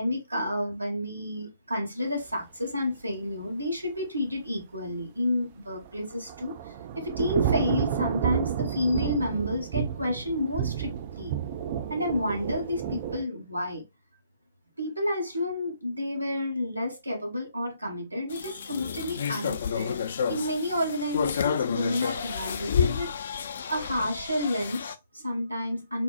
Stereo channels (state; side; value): inverted; both; correlation -0.68